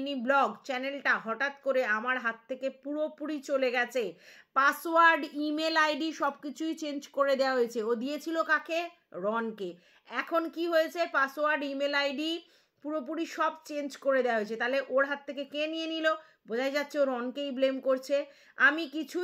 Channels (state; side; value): identical; both; correlation 1.00